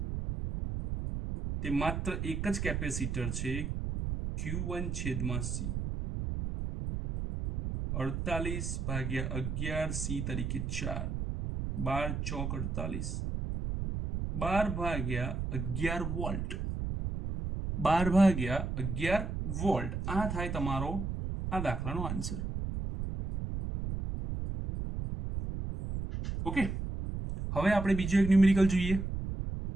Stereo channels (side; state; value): right; noise; rumble, 3 dB below the sound